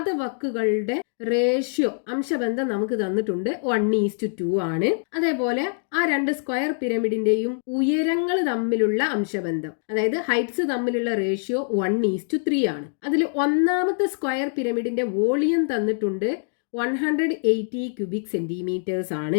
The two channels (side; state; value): right; silent; digital silence